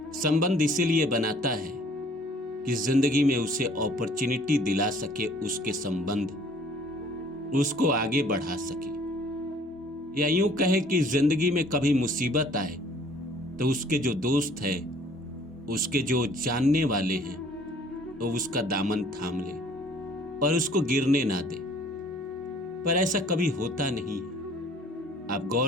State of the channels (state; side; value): normal; both; correlation 0.55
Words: संबंध इसीलिए बनाता है कि जिंदगी में उसे अपॉर्चुनिटी दिला सके, उसके संबंध उसको आगे बढ़ा सके, या यूं कहे कि जिंदगी में कभी मुसीबत आए तो उसके जो दोस्त है, उसके जो जानने वाले हैं, वो उसका दामन थाम ले और उसको गिरने ना दे। पर ऐसा कभी होता नहीं है। आप